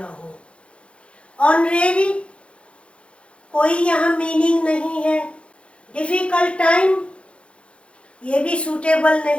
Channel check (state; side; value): late; right; 0.059 ms